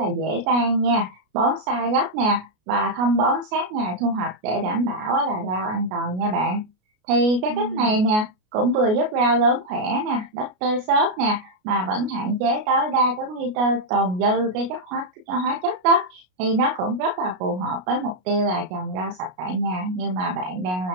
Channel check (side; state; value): left; late; 33 ms